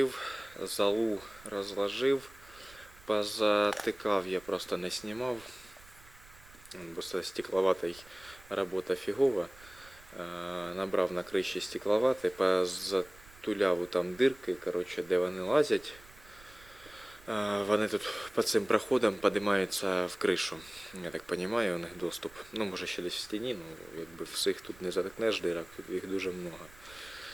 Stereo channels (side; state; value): right; noise; rumble, 23 dB below the sound